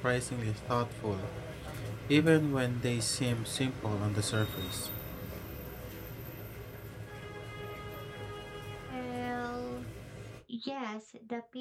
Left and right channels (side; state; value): both; identical; correlation 1.00